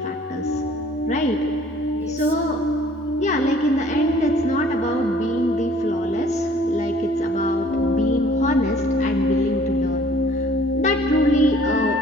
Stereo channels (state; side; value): normal; both; correlation 0.56